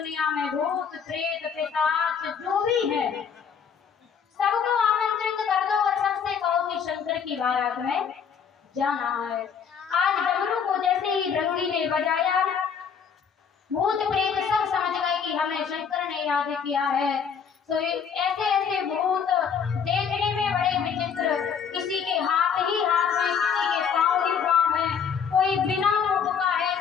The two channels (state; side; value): quieter; right; 6.9 dB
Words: में भूत प्रेत पिशाच जो भी है सबको आमंत्रित कर दो और सबसे कहो कि शंकर की बारात में जाना है। आज डमरू को जैसे ही रंगी ने बजाया, भूत प्रेत सब समझ गए कि हमें शंकर ने याद किया है। तो ऐसे ऐसे भूत देखने में बड़े विचित्र, किसी के हाथ ही हाथ में, किसी के पांव ही पांव है, कोई बिना मुख का है,